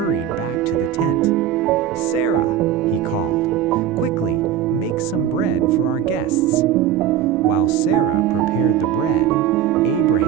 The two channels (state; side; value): quieter; left; 9.9 dB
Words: back to the tent. "Sarah," he called, "quickly, make some bread for our guests." While Sarah prepared the bread,